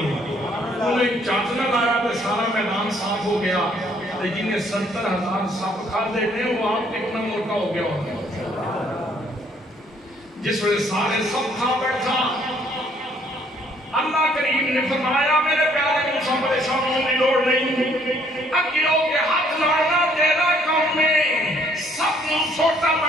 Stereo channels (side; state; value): both; normal; correlation 0.64